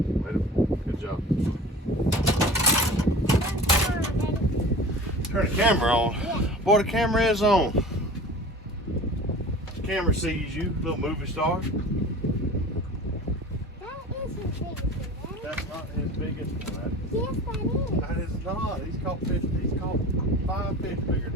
Let him. Good job. Turn the camera on. Yeah. Boy, the camera is on. The camera sees you, little movie star. That is his biggest one, Daddy. That's not his biggest one. Yes, that is. That is not. He's caught 5 fish bigger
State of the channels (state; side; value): normal; both; correlation 0.39